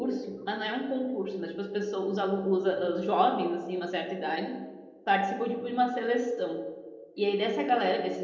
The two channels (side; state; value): both; identical; correlation 1.00